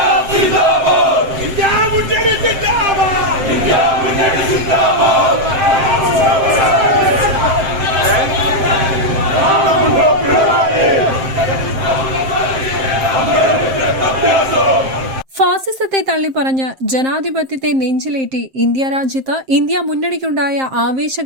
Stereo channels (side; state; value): left; late; 7.6 ms